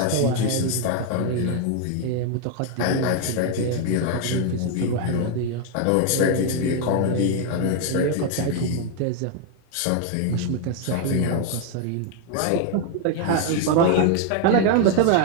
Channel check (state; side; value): different; both; correlation 0.00